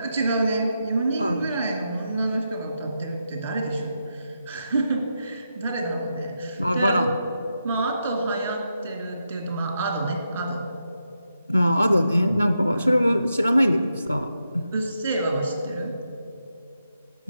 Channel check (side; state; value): both; inverted; correlation -0.85